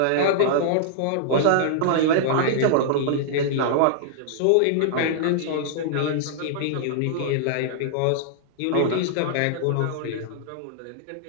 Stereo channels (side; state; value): both; different; correlation -0.01